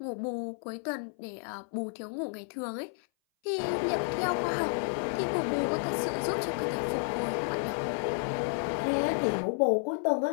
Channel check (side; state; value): right; silent; 57 dB below the other